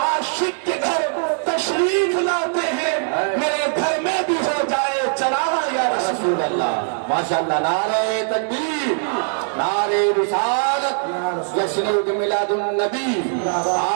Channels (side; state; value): left; silent; digital silence